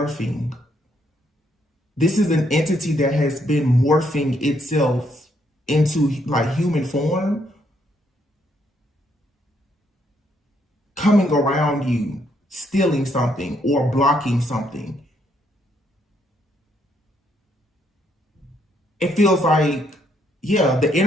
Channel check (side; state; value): both; normal; correlation 0.73